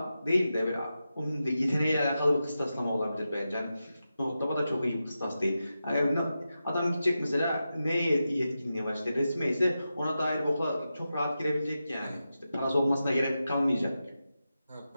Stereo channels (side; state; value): both; inverted; correlation -0.90